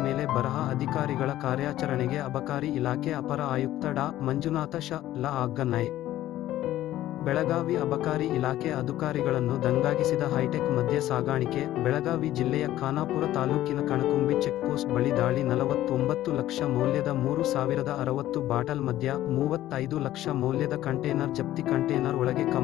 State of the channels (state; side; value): quieter; right; 14.0 dB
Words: ಮೇಲೆ ಬರಹ. ಅಧಿಕಾರಿಗಳ ಕಾರ್ಯಾಚರಣೆಗೆ ಅಬಕಾರಿ ಇಲಾಖೆ ಅಪರ ಆಯುಕ್ತ ಡಾ. ಮಂಜುನಾಥ ಶ. ಲ. ಆಜ್ಞೆ. ಬೆಳಗಾವಿ ಅಬಕಾರಿ ಇಲಾಖೆ ಅಧಿಕಾರಿಗಳನ್ನು ದಂಗಾಗಿಸಿದ ಹೈಟೆಕ್ ಮದ್ಯ ಸಾಗಾಣಿಕೆ. ಬೆಳಗಾವಿ ಜಿಲ್ಲೆಯ ಖಾನಾಪುರ ತಾಲೂಕಿನ ಕಣಕುಂಬಿ ಚೆಕ್ಪೋಸ್ಟ್ ಬಳಿ ದಾಳಿ. 49 ಲಕ್ಷ ಮೌಲ್ಯದ 3060 ಬಾಟಲ್ ಮದ್ಯ, 35 ಲಕ್ಷ ಮೌಲ್ಯದ ಕಂಟೇನರ್ ಜಪ್ತಿ. ಕಂಟೇನರ್ ಒಳಗೆ